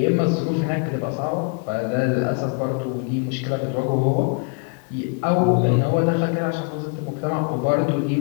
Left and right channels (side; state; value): right; quieter; 37.1 dB